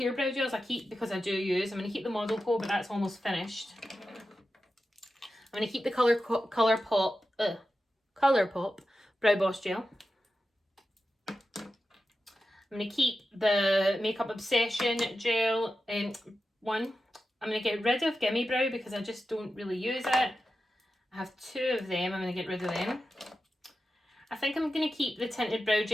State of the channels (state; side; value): normal; both; correlation 0.91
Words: brow gels I keep because I do use. I'm going to keep the Model Co, but that's almost finished. I'm going to keep the Colourpop Brow Boss Gel. I'm going to keep the Makeup Obsession Gel one. I'm going to get rid of Gimme Brow because I just don't really use it. I have 2 of them. I'm going to get rid of them. I think I'm going to keep the Tinted Brow